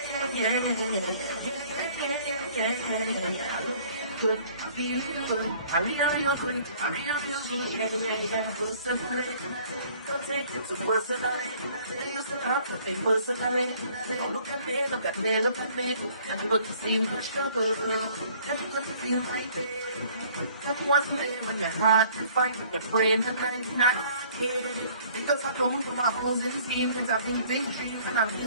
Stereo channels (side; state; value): both; inverted; correlation -0.56